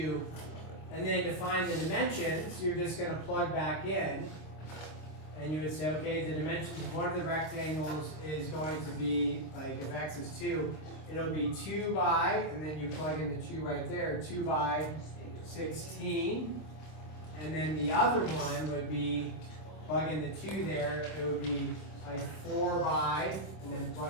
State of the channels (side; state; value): right; late; 26 ms